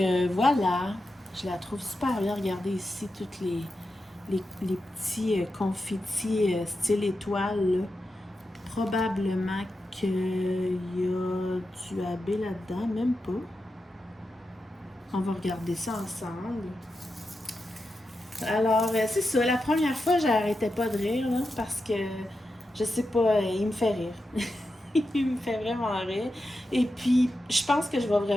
voilà. Je la trouve super bien. Regardez ici toutes les petits confettis style étoile. Là. Probablement qu'il y a du AB là-dedans. Même pas. On va regarder ça ensemble. Alors, c'est ça. La première fois, j'arrêtais pas de rire. Là, parce que, je sais pas, il me fait rire. Il me fait vraiment rire. Et puis, je pense que je vais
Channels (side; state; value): both; normal; correlation 0.89